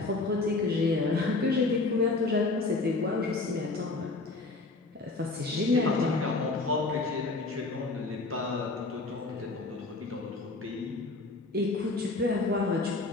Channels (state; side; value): quieter; right; 3.5 dB